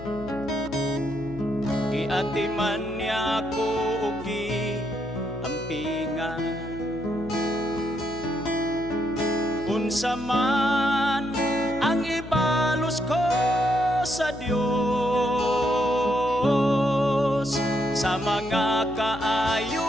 giatiman niya ako ug giampingan. Unsa man ang ibalos ko sa Dios, sa mga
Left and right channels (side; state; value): left; noise; hum, 13 dB below the sound